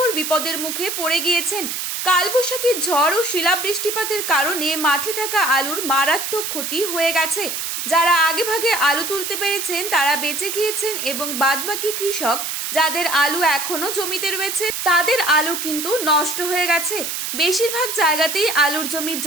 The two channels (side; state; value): right; noise; hiss, 3 dB below the sound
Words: বিপদের মুখে পড়ে গিয়েছেন। কালবৈশাখী ঝড় ও শিলাবৃষ্টিপাতের কারণে মাঠে থাকা আলুর মারাত্মক ক্ষতি হয়ে গেছে। যারা আগেভাগে আলু তুলতে পেরেছেন তারা বেঁচে গিয়েছেন এবং বাদবাকি কৃষক যাদের আলু এখনো জমিতে রয়েছে তাদের আলু কিন্তু নষ্ট হয়ে গেছে। বেশিরভাগ জায়গাতেই আলুর জমি